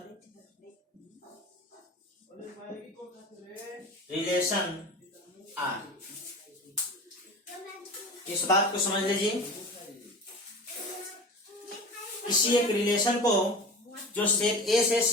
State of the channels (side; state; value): both; normal; correlation 0.33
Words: relation R। इस बात को समझ लीजिए, किसी एक रिलेशन को जो सेट ए से